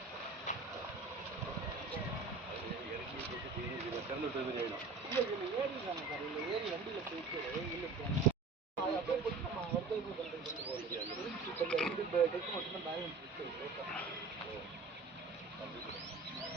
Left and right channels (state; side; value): quieter; left; 4.1 dB